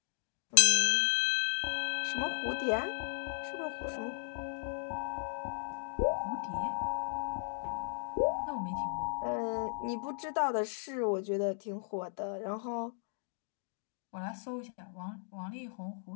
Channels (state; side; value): silent; right; digital silence